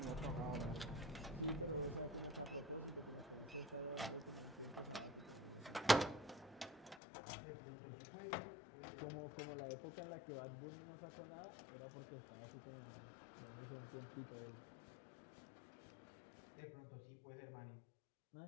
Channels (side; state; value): right; drops out; at 7.0 s